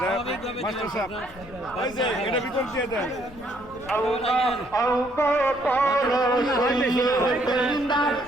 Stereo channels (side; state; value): left; noise; rumble, 20 dB below the sound